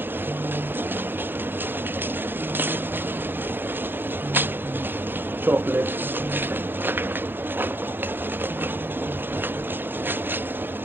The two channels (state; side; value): late; left; 0.10 ms